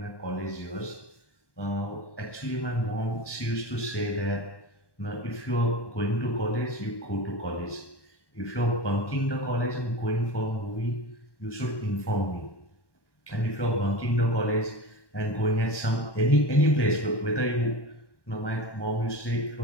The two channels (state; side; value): late; right; 1.1 ms